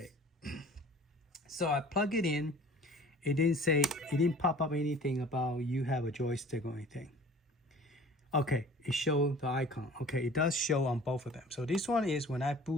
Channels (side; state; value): both; normal; correlation 0.47